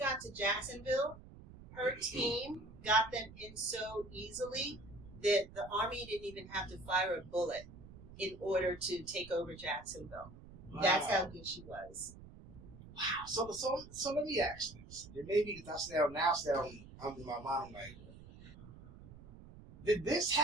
to Jacksonville, her team got them in so easily that the Army didn't even have to fire a bullet in order to take over Jacksonville. Wow. That's how good she was. Wow. So let me ask this. It may be because I'm in my mind, like, did this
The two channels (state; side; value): noise; right; rumble, 17 dB below the sound